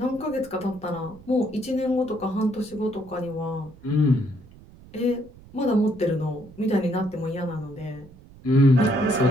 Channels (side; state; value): right; noise; rumble, 22 dB below the sound